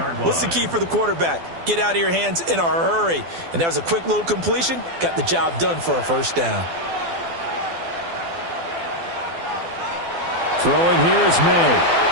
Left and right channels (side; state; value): left; late; 12 ms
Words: What's the key for the quarterback? Get out of your hands in a hurry. And that was a quick little completion. Got the job done for a first down. Throwing here is May.